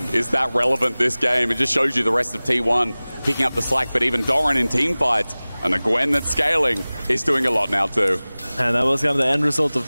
is that relevant this game. It just shows you the rest of T1 picking up the slack, but even Doran in team fights and the Gwen that's scaling is doing a lot now too. And that was kind of the end result of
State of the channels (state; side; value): inverted; both; correlation -0.99